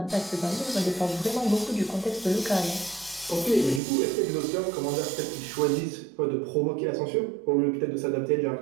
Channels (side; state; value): left; drops out; at 3.8 s